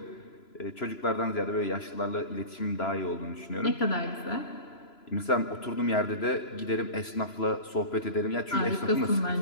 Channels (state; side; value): late; right; 3.0 ms